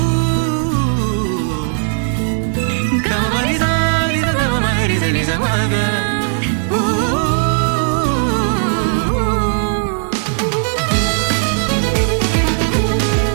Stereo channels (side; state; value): left; silent; 61 dB below the other